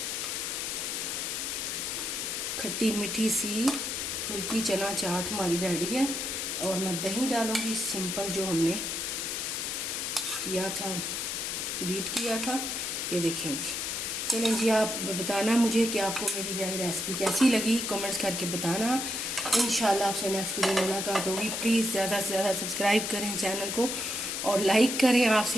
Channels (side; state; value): left; noise; hiss, 2 dB below the sound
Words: खट्टी मीठी सी फुल्की चना चाट हमारी रेडी है। और मैं दही डालूंगी सिंपल, जो हमने किया था, बीट किया था। ये देखें जी। चलें जी, आप बताना मुझे कि आपको मेरी यह रेसिपी कैसी लगी, कमेंट्स करके बताना। इंशाल्लाह आपसे नेक्स्ट वीडियो में मुलाकात होगी। प्लीज़ ज़्यादा से ज़्यादा सब्सक्राइब करें चैनल को और लाइक करें।